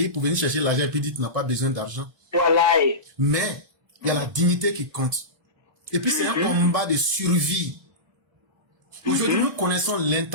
pour venir chercher l'argent et puis dire que tu n'as pas besoin d'argent. Voilà. Mais il y a la dignité qui compte. Et puis c'est un combat de survie. Aujourd'hui, nous connaissons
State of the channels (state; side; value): late; left; 1.9 ms